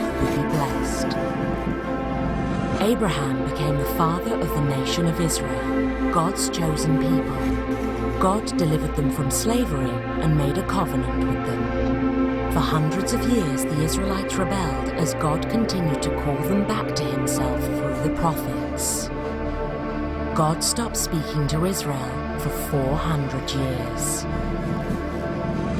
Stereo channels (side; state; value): both; identical; correlation 1.00